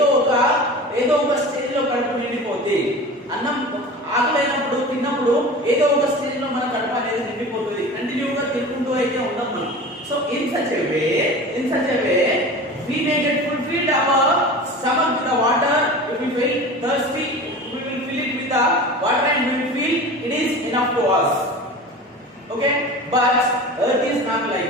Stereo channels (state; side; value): normal; both; correlation 0.35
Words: ఒక స్టేజ్ లో కడుపు నిండిపోతుంది. అన్నం ఆకలైనప్పుడు తిన్నప్పుడు ఏదో ఒక స్టేజ్ లో మన కడుపు అనేది నిండిపోతుంది. కంటిన్యూగా తినుకుంటూ అయితే ఉండం మనం. So in such a way we may get fulfilled our stomach with the water. If we feel thirsty, we will fill it with the water and we will feel it is enough to us. Okay, but earth is not like